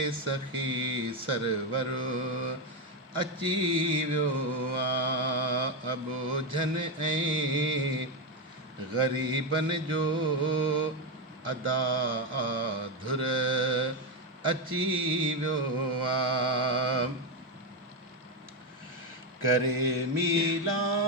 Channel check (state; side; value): normal; both; correlation 0.09